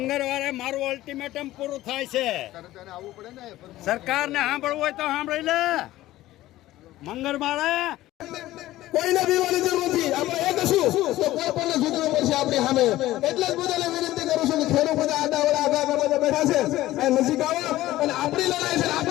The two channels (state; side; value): quieter; right; 15.8 dB